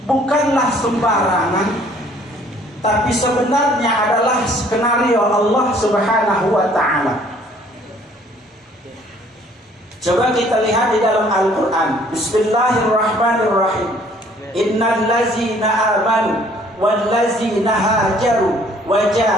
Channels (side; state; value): both; normal; correlation 0.59